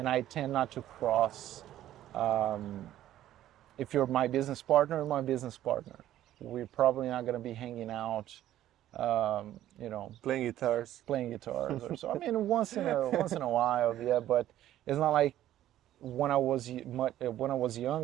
I tend not to cross. If you're my business partner, you're my business partner. We're probably not going to be hanging out, you know, Playing guitars. playing guitars or so. I mean, once in a while, yeah. But it's not like when I was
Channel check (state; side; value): quieter; left; 12.9 dB